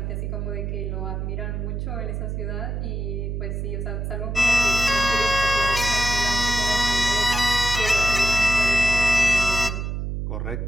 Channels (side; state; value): right; noise; hum, 3 dB below the sound